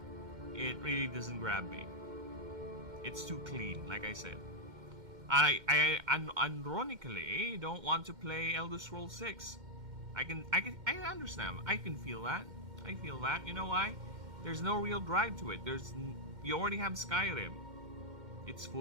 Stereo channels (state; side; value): late; left; 2.1 ms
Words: It really doesn't grab me. It's too clean, like I said. I ironically don't want to play Elder Scrolls 6. I understand. I can feel that. I feel that. You know why? There's no real drive to it. You already have Skyrim. It's